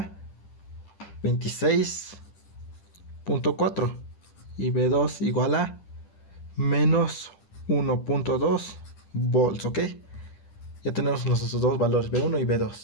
26.4 y B2 igual a menos 1.2 volts, ¿ok? Ya tenemos nuestros dos valores, B1 y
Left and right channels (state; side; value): late; right; 10 ms